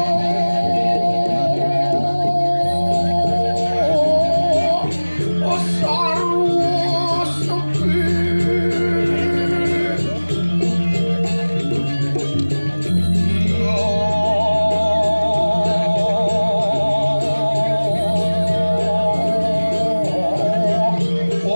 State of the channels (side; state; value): both; inverted; correlation -1.00